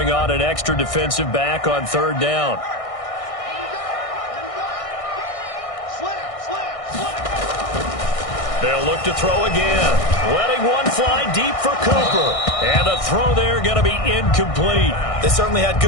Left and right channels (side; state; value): right; late; 1.6 ms